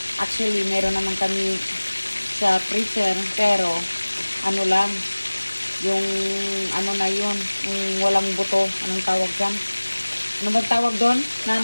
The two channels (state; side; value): inverted; both; correlation -1.00